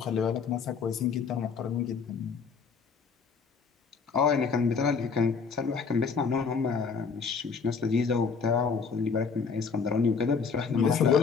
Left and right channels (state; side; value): quieter; right; 5.5 dB